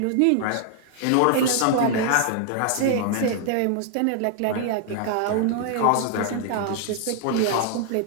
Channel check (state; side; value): different; both; correlation 0.00